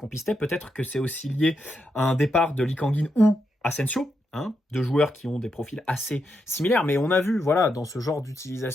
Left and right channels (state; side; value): normal; both; correlation 0.83